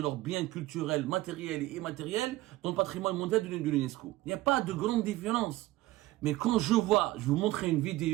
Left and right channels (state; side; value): quieter; left; 17.4 dB